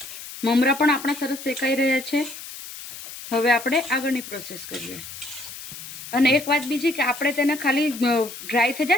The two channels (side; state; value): left; noise; hiss, 12 dB below the sound